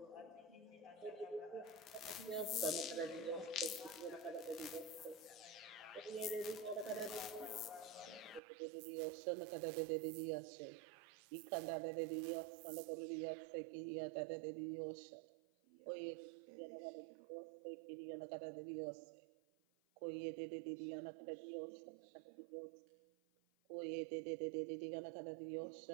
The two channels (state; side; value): drops out; left; at 8.4 s